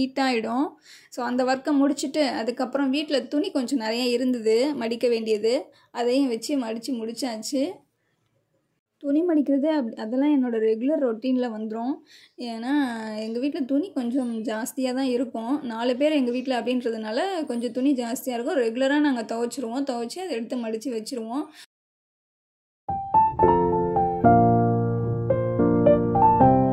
ஸோ அந்த ஒர்க்கை முடிச்சுட்டு அதுக்கப்புறம் வீட்டில் துணி கொஞ்சம் நிறைய இருந்தது மடிக்க வேண்டியது, அதையும் வச்சு மடித்து முடித்தாச்சு. துணி மடிக்கிறது அதெல்லாம் என்னோடய ரெகுலர் ரொட்டீனில் வந்துடும். ஏன்னா எங்கள் வீட்டில் துணி கொஞ்சம் ஜாஸ்தியாக தான் இருக்கும். 4 பேர் எங்கள் வீட்டில் அப்படின்றதுனால கொஞ்சம் துணி ஜாஸ்தியாக இருக்கும். ரெகுலராக நாங்கள் துவைச்சிருவோம். துவைச்சி அதை எடுத்து மடித்து வச்சுருவோம்.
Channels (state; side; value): identical; both; correlation 1.00